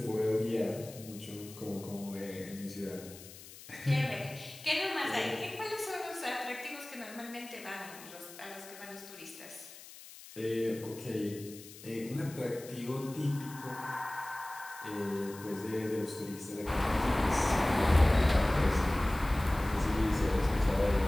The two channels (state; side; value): noise; left; hiss, 17 dB below the sound